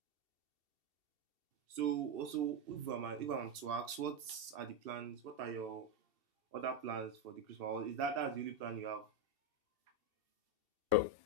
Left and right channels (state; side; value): late; left; 2.7 ms